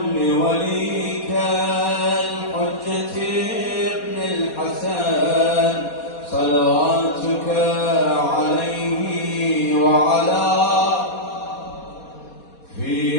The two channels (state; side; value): late; right; 4.2 ms